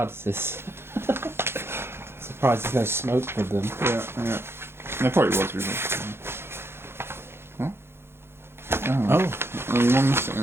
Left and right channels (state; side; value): late; left; 0.12 ms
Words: Surprised there's no smoke with them. Yeah. There probably was before. What? Oh. One missing